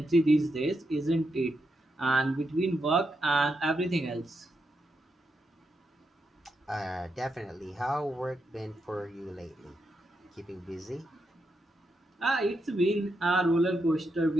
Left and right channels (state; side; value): normal; both; correlation 0.84